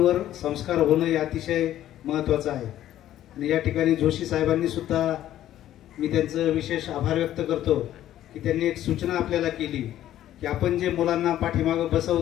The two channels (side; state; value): right; quieter; 12.6 dB